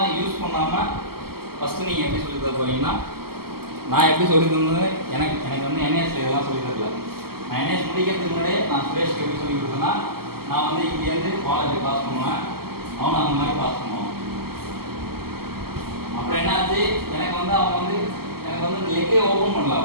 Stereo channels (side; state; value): left; late; 0.95 ms